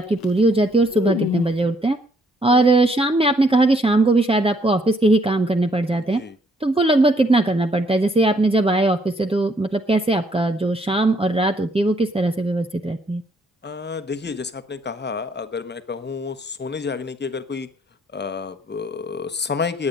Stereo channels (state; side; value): normal; both; correlation 0.68